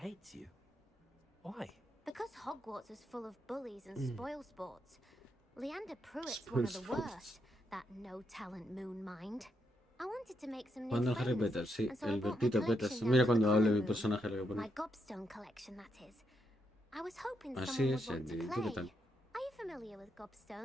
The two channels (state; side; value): normal; both; correlation 0.80